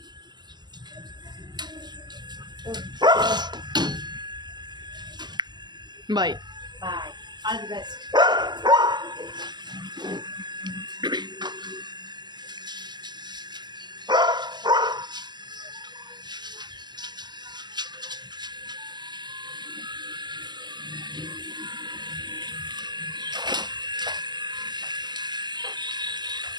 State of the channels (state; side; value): late; left; 0.21 ms